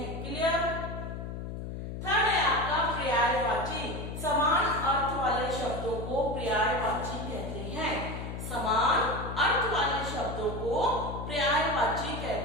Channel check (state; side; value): noise; left; hum, 7 dB below the sound